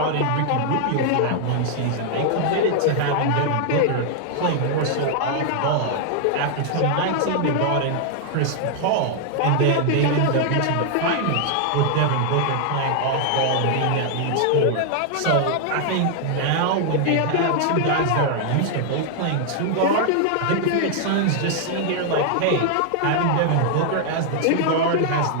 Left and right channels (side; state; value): both; different; correlation 0.00